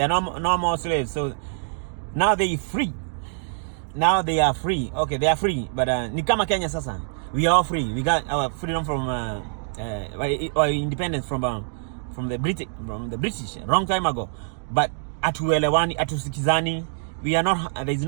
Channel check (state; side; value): silent; left; digital silence